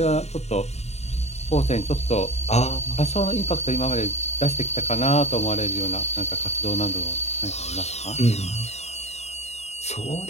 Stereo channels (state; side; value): late; right; 0.32 ms